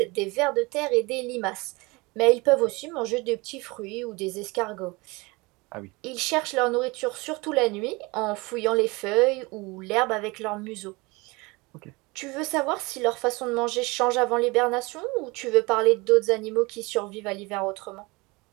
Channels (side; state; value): left; quieter; 24.8 dB